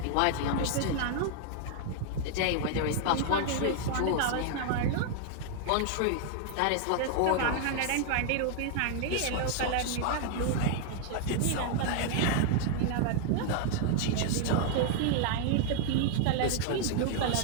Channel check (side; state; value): both; different; correlation 0.00